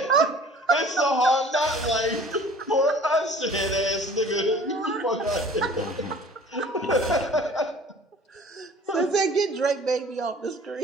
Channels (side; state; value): both; normal; correlation 0.48